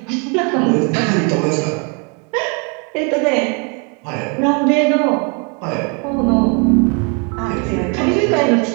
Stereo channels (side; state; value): left; quieter; 34.6 dB